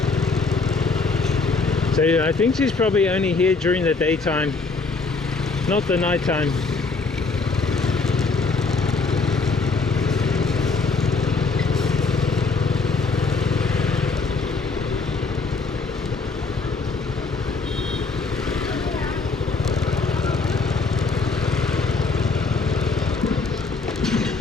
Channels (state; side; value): quieter; right; 4.2 dB